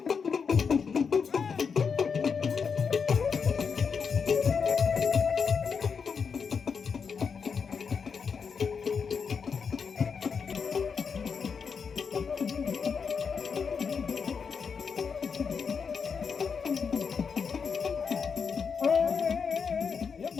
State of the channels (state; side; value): quieter; right; 5.9 dB